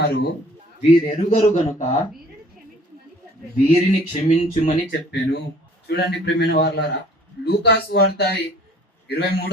వీరెరుగరు గనుక వీరిని క్షమించుమని చెప్పాను. చూడండి ప్రియమైన వారలారా, లూకాసు వార్త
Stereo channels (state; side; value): normal; both; correlation 0.53